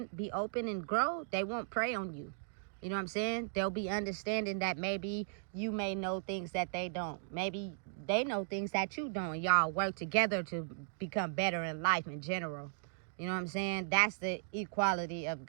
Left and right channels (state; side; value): silent; left; digital silence